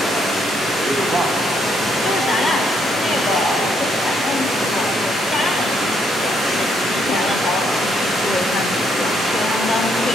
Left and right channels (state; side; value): normal; both; correlation 0.73